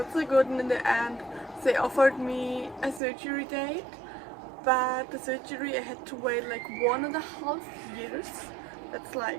so good, and in the end they offered me a surgery date, but the surgery I had to wait like 1.5 years. That's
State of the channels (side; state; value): left; drops out; at 3.0 s